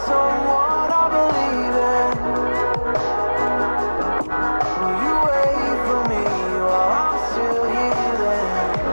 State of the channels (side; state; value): both; inverted; correlation -1.00